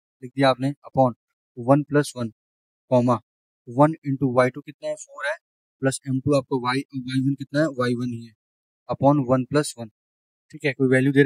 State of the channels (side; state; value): both; identical; correlation 1.00